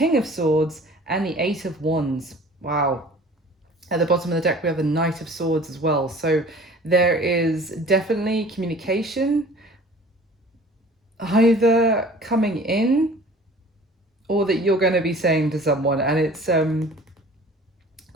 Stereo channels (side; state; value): both; normal; correlation 0.47